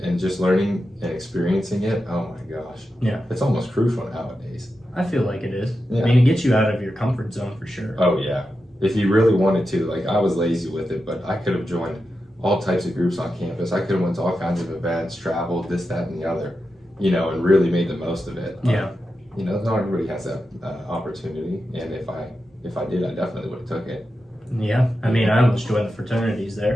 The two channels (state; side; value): normal; both; correlation 0.90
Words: just learning and experiencing it, oh my gosh. Yeah. It's almost crucial nowadays. I feel like it is. Yeah. I mean, it gets you out of your comfort zone for sure. Oh yeah. If you really wanted to, like, I was lazy with it, but I could have joined all types of groups on campus. I could have went to all kinds of events, traveled, this, that, and the other, and really made the most of it. Yeah. Not everybody has that opportunity, and if I did, I definitely would have took it. Yeah. I mean, I almost joined the fraternities